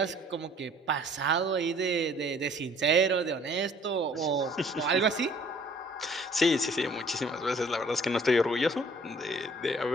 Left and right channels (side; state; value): both; normal; correlation 0.56